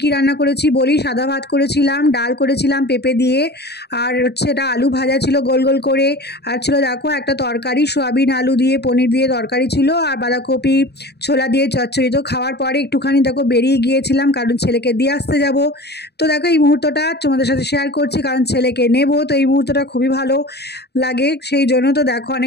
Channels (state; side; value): late; right; 0.48 ms